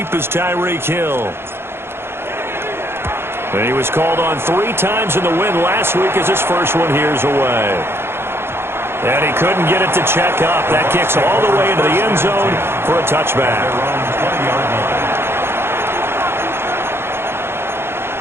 is Tyreek Hill. And he was called on 3 times in the win last week as his first one here's away. And he couldn't get it to check up. That kicks all the way into the end zone for a touchback.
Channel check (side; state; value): left; late; 0.11 ms